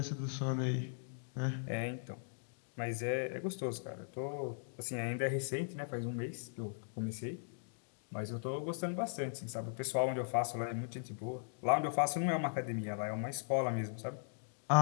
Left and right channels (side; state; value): right; silent; digital silence